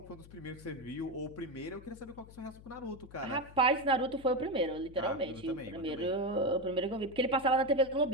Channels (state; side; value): noise; left; hum, 19 dB below the sound